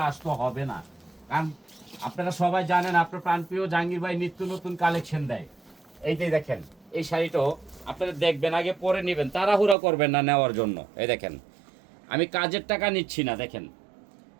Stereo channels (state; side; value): drops out; left; at 9.8 s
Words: আসতে হবে না। কারণ আপনারা সবাই জানেন আপনার প্রাণপ্রিয় জাহাঙ্গীর ভাই নিত্য নতুন কালেকশন দেয়। এই যে দেখেন, এই শাড়িটাও আপনারা দেখবেন, আগে পরে নেবেন, তাড়াহুড়া করবেন না নেওয়ার জন্য। এই দেখেন, আমি কাজের টাকা নিচ্ছি না। দেখেন